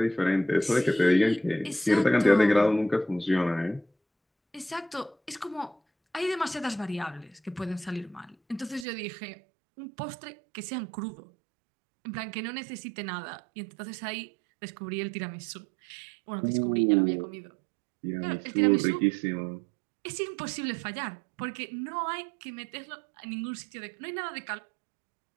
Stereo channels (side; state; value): left; drops out; at 8.8 s